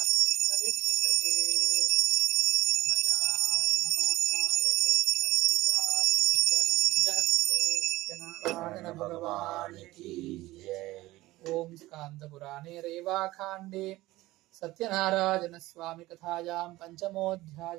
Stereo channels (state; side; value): quieter; left; 18.2 dB